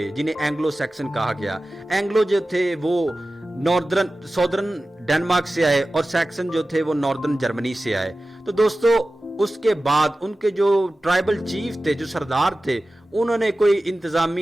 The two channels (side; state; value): both; normal; correlation 0.95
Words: جنہیں اینگلو سیکسن کہا گیا۔ اینگلو جو تھے وہ سودرن ڈنمارک سے آئے اور سیکسن جو تھے وہ ناردرن جرمنی سے آئے۔ تو دوستو اس کے بعد ان کے جو ٹرائبل چیف تھے، جو سردار تھے، انہوں نے کوئی